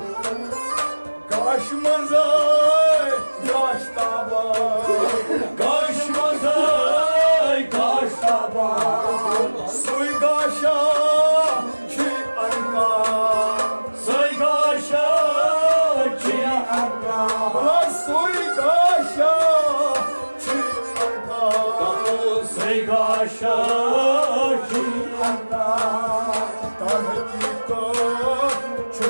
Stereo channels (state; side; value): inverted; both; correlation -1.00